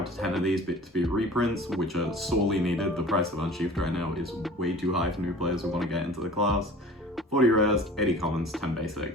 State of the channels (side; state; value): both; normal; correlation 0.43